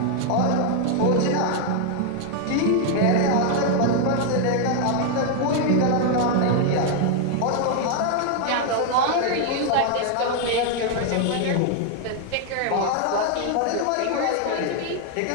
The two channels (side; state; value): both; different; correlation 0.01